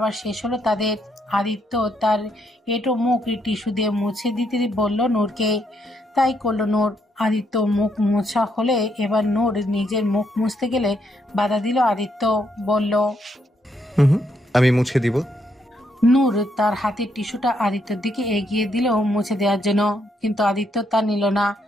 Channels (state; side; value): normal; both; correlation 0.75